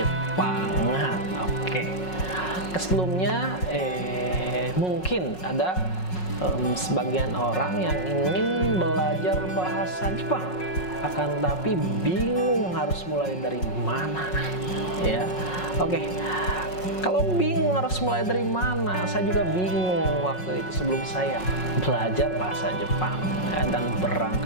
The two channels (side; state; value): right; late; 5.4 ms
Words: Oke. Sebelumnya mungkin ada sebagian orang yang ingin belajar bahasa Jepang, akan tapi bingung harus mulai dari mana ya. Oke, kalau bingung harus mulai dari mana, saya juga bingung waktu itu sebelum saya belajar bahasa Jepang ya, dan